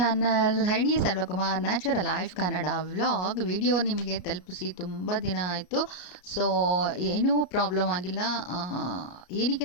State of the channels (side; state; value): right; late; 33 ms